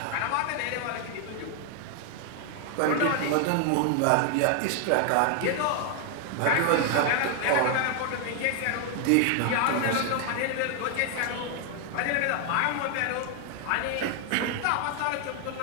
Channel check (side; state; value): both; different; correlation 0.00